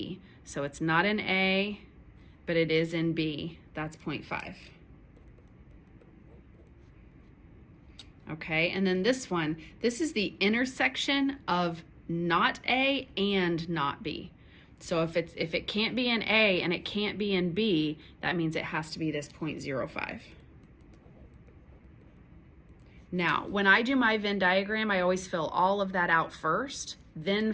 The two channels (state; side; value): identical; both; correlation 1.00